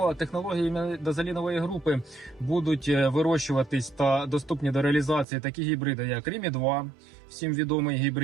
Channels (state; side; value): drops out; left; at 5.2 s